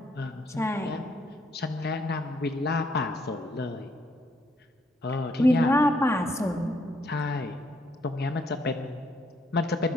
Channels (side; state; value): both; normal; correlation 0.71